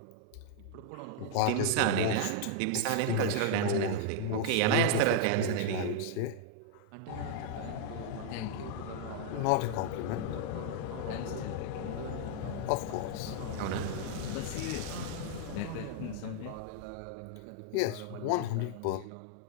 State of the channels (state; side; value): different; both; correlation 0.00